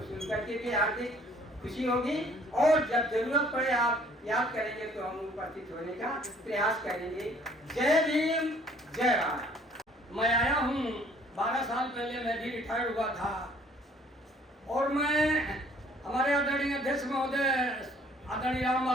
सुनकर के भी हार्दिक खुशी होगी और जब जरूरत पड़े आप याद करेंगे तो हम उपस्थित होने का प्रयास करेंगे। जय भीम, जय भारत। मैं आया हूँ, 12 साल पहले मैं भी रिटायर्ड हुआ था और मैं हमारे आदरणीय अध्यक्ष महोदय आदरणीय राम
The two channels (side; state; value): both; normal; correlation 0.58